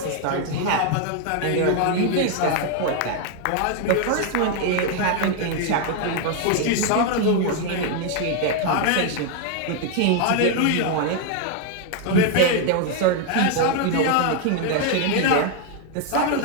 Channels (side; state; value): both; different; correlation 0.00